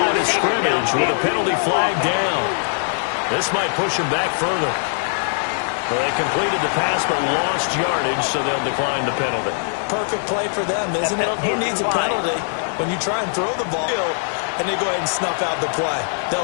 of scrimmage with a penalty flag down. This might push him back further. Well, they completed the pass but lost yardage, so they'll decline the penalty. Perfect play for them, isn't it? Who needs a penalty when you try and throw the ball and they go ahead and snuff out the play? They'll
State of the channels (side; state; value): right; silent; digital silence